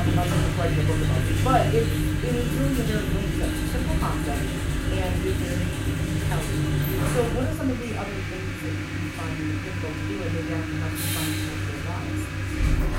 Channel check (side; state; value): both; identical; correlation 1.00